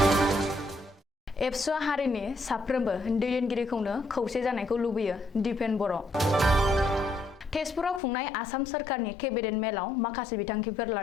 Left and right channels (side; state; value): right; drops out; at 8.0 s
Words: एबसुआ हारिनि साफ्रोमबो दैदेनगिरिखौनो खौसे जानायखौ लुबैयो दिपेन बर'। तेजपुराव खुंनाय आसाम सोरखारनि केबिनेट मेलाव माखासे बिथांखिफोर